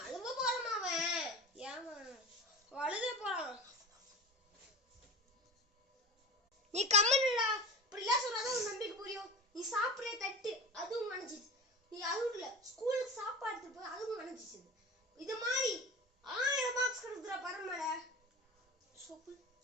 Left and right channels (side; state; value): both; normal; correlation 0.30